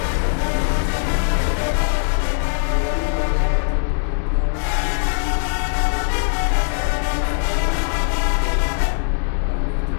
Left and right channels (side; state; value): right; silent; digital silence